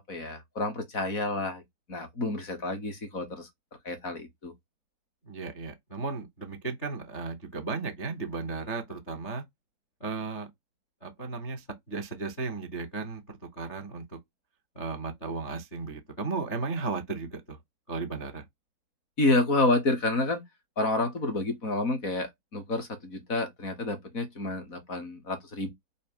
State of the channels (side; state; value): right; late; 4.1 ms